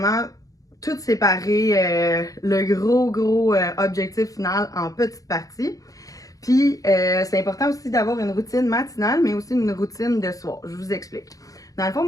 tout séparer le gros objectif final en petites parties. Puis, c'est important aussi d'avoir une routine matinale, mais aussi une routine de soir. Je vous explique. Dans le fond,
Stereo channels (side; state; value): right; late; 0.17 ms